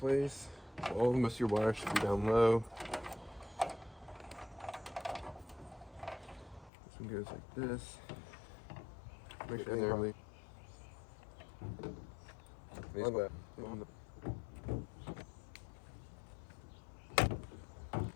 All most of your wires should be down low. This one goes like this. Make sure they're really.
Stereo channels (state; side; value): drops out; right; at 6.7 s